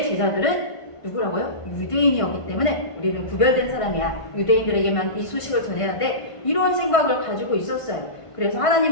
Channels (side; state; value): right; late; 1.5 ms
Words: 제자들은 누구라고요? 유대인이었기 때문에 우리는 구별된 사람이야. 유대인들에게만 이 소식을 전해야 돼. 이런 생각을 가지고 있었어요. 그래서